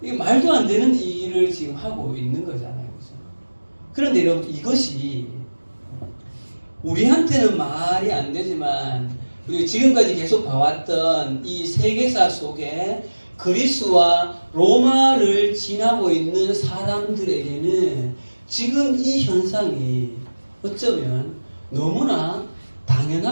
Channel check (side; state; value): both; inverted; correlation -1.00